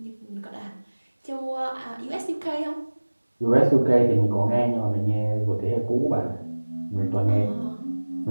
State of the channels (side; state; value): both; inverted; correlation -1.00